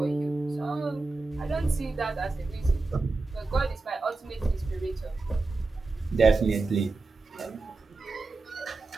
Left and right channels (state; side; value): quieter; left; 3.5 dB